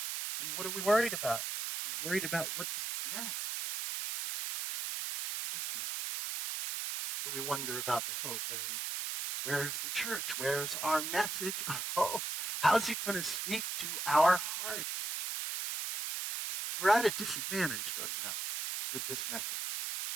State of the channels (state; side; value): noise; right; hiss, 3 dB below the sound